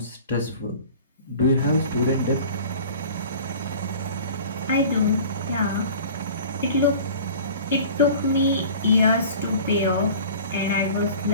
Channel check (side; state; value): both; inverted; correlation -0.43